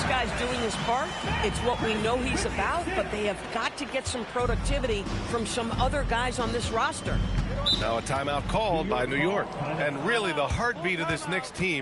guy's doing his part. It's what we know he's about, but they have got to get some productivity from some other guys on this roster. Now a timeout called by New York. And really the heartbeat of this Knicks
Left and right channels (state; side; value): identical; both; correlation 1.00